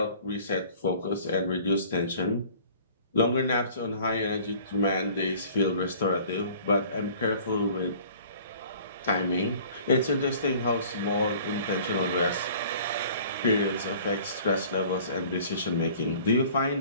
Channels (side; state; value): both; inverted; correlation -0.50